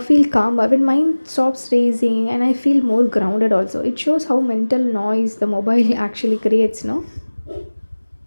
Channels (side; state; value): both; inverted; correlation -1.00